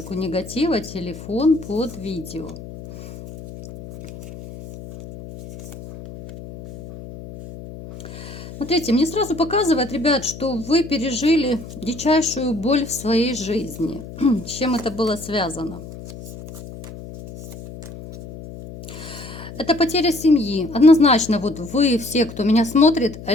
негатива, телефон под видео. Смотрите, мне сразу показывает, ребят, что вы пережили дичайшую боль в своей жизни. С чем это было связано? Это потеря семьи. Однозначно, вот вы все, кто меня смотрит,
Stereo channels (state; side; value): noise; left; hum, 14 dB below the sound